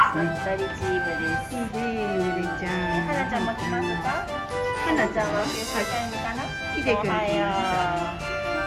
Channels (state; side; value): identical; both; correlation 1.00